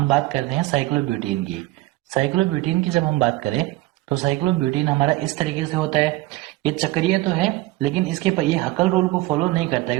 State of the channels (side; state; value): left; quieter; 18.7 dB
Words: बात करते हैं साइक्लोब्यूटेन की। साइक्लोब्यूटेन की जब हम बात करें तो साइक्लोब्यूटेन हमारा इस तरीके से होता है, ये चक्रीय तो है लेकिन इसके पर ये हकल रूल को फॉलो नहीं करता है